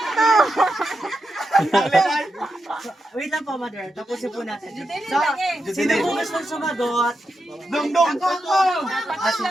Wait lang po, Mother. Tapusin po natin. So, sino po gusto sumagot? Dong.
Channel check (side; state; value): both; normal; correlation 0.87